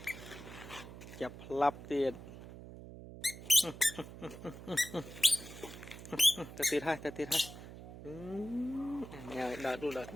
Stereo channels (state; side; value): noise; right; hum, 13 dB below the sound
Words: Chập lắp tiền. Ta tiệt hai. Nhờ đu